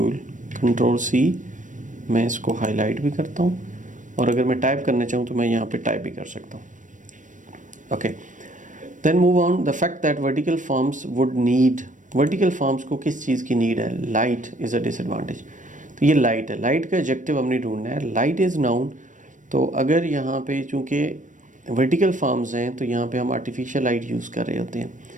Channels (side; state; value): left; late; 0.37 ms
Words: control C, मैं इसको हाईलाइट भी करता हूँ और अगर मैं टाइप करना चाहूँ तो मैं यहाँ पे टाइप भी कर सकता हूँ। Okay, then move on the fact that vertical farms would need, vertical farms को किस चीज़ की नीड है? Light is a disadvantage. तो ये लाइट है, लाइट का एडजेक्टिव हमने ढूंढना है। लाइट इज़ नाउन, तो अगर यहाँ पे चूँकि वर्टिकल फॉर्म्स हैं तो यहाँ पे हम आर्टिफिशियल लाइट यूज़ कर रहे होते हैं,